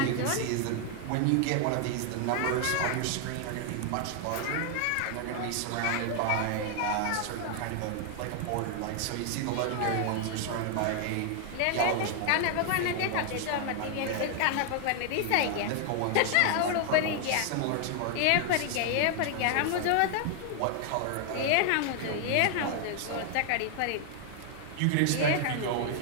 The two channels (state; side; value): different; both; correlation 0.00